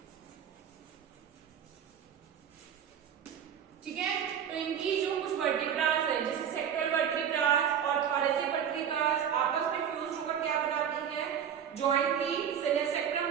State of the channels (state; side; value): quieter; left; 8.6 dB